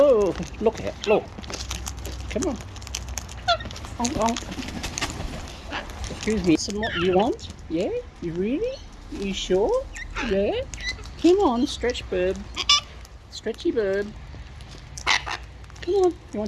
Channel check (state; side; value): identical; both; correlation 1.00